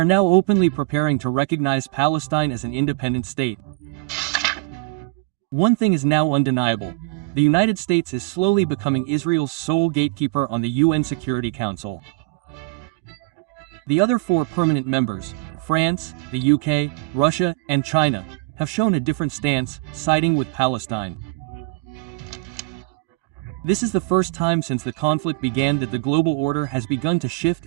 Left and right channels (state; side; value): quieter; left; 24.2 dB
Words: now openly preparing to recognize Palestine as an independent state. One thing is now undeniable. The United States is slowly becoming Israel's sole gatekeeper on the UN Security Council. The other 4 permanent members, France, the UK, Russia, and China, have shown a different stance, siding with Palestine. This is the first time since the conflict began that the global order has begun to shift